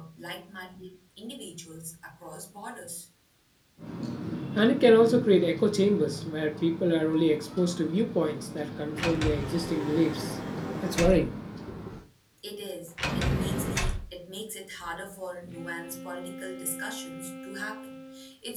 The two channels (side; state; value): both; identical; correlation 1.00